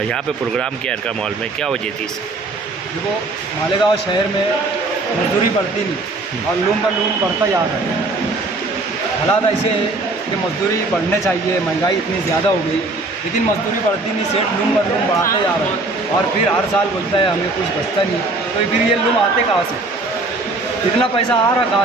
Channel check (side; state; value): left; quieter; 3.2 dB